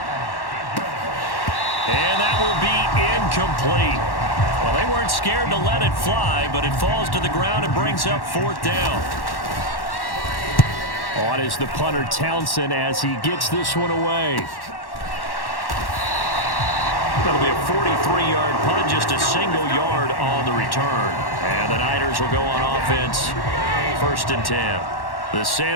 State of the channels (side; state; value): right; late; 1.1 ms